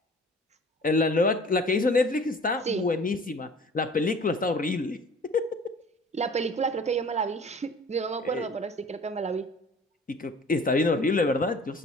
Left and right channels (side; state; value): both; normal; correlation 0.47